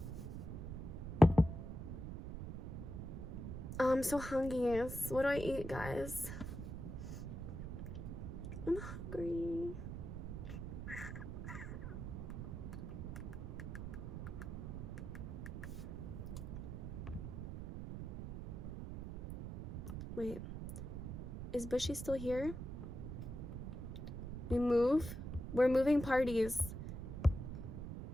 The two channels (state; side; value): noise; right; rumble, 6 dB below the sound